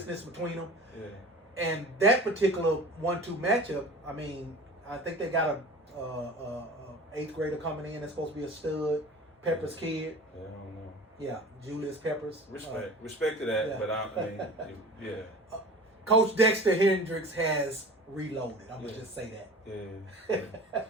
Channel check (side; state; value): both; normal; correlation 0.40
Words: between them. Yeah. And that particular 1-2 matchup, I mean, I think they got a 8th grader coming in that's supposed to be a stud, Peppers kid. Yeah, I don't know. Yeah, Julius Peppers. Respect to that, but I mean, yeah. Coach Dexter Hendricks has reloaded. I'm gonna just say that. Yeah.